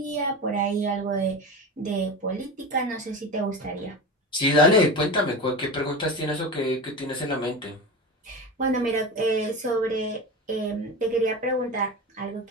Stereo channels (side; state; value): both; normal; correlation 0.26